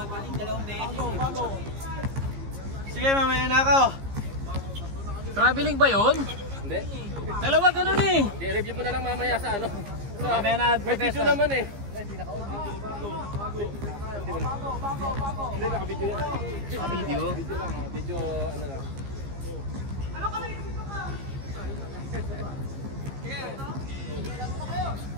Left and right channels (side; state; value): left; late; 15 ms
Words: mamaya na ako. Traveling ba yun? Hindi. Dalawa ganun eh. I-review mo na lang mamaya sa ano. Mamaya na May video naman eh. Hindi, naka-video yan. Video? Video lang, video ano lang.